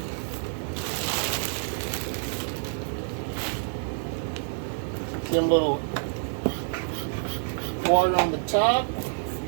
Give them a little water on the top.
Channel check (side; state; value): left; silent; 60 dB below the other